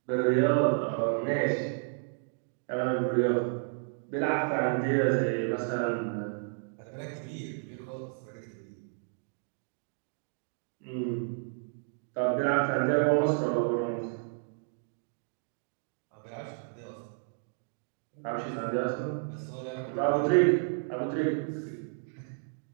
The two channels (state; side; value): silent; left; digital silence